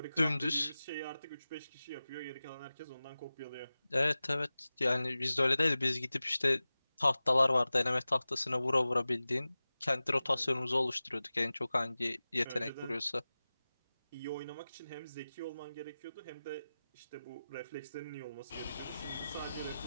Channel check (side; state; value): both; inverted; correlation -0.96